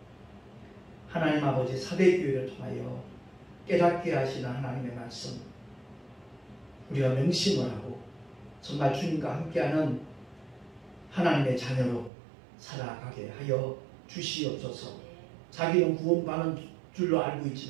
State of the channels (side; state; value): left; drops out; at 12.1 s